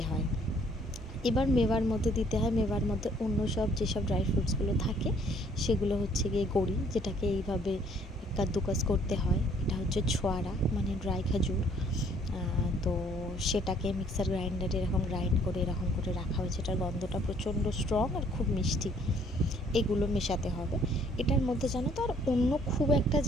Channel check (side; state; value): both; normal; correlation 0.62